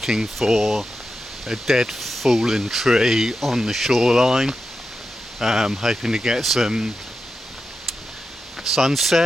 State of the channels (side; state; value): both; normal; correlation 0.90